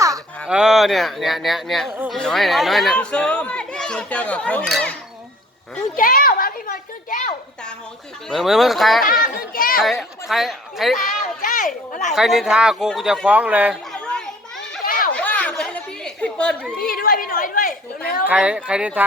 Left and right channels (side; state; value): both; normal; correlation 0.53